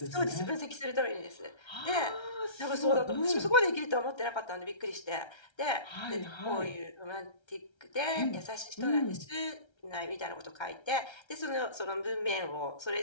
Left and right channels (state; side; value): late; right; 1.3 ms